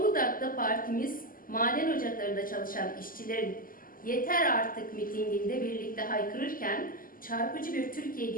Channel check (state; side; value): late; right; 0.41 ms